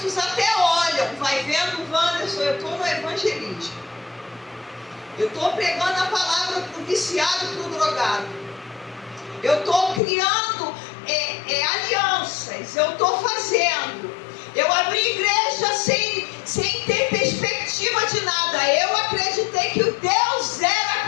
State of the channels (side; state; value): right; drops out; at 10.0 s